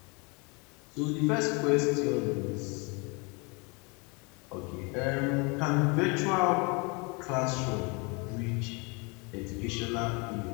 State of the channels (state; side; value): quieter; right; 30.4 dB